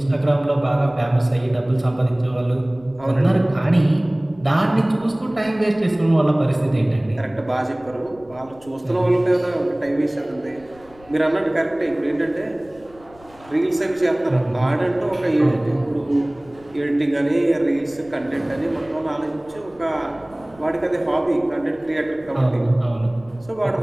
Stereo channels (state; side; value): noise; left; rumble, 25 dB below the sound